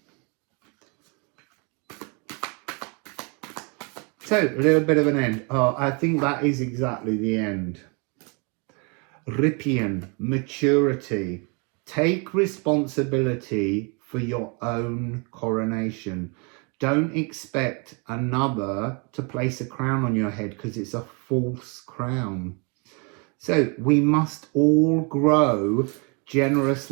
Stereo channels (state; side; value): quieter; left; 33.2 dB